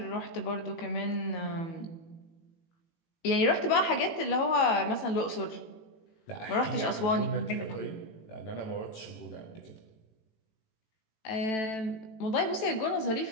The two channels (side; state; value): right; late; 18 ms